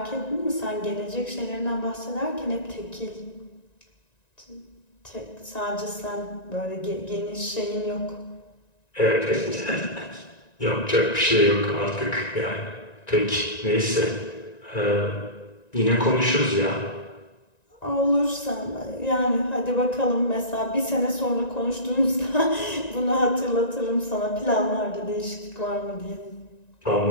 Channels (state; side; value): late; right; 1.9 ms